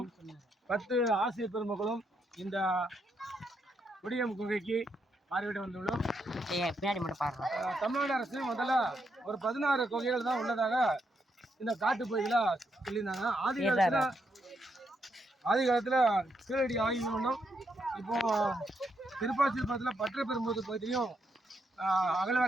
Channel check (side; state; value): both; normal; correlation 0.79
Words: 10 ஆசிரியர் பெருமக்களும் இந்த குடியம் குகைக்கு பார்வையிட வந்துள்ளோம். தமிழ்நாடு அரசு முதல்ல ஒரு 16 குகைகள் தான் உள்ளதாக இந்த காட்டு பகுதியில் சொல்லியிருந்தாங்க. ஆதி காலத்தில் கீழடி ஆய்வு பண்ணோம். இப்போ திருப்பாச்சிபுரத்தில் பற்றப்பெரும்போது பகுதியிலையும்